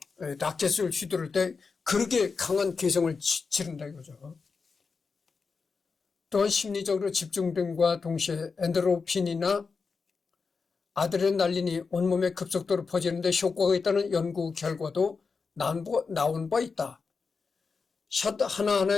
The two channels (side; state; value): right; quieter; 4.9 dB